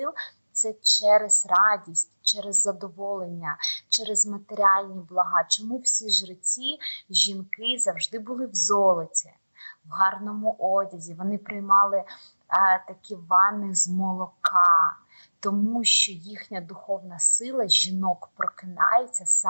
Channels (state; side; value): inverted; both; correlation -1.00